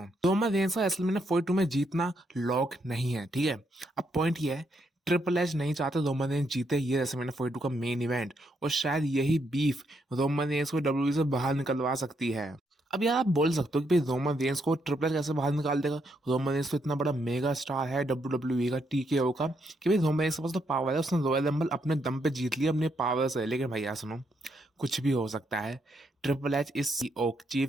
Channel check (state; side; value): normal; both; correlation 0.77